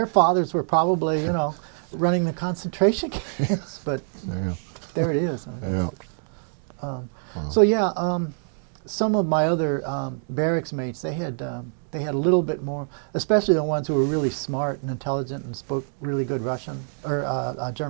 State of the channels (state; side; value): silent; left; 62 dB below the other